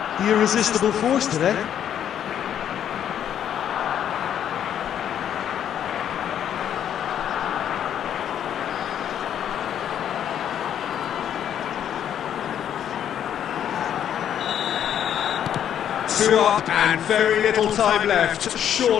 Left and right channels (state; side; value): quieter; right; 9.7 dB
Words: The irresistible force today. Two up and very little time left.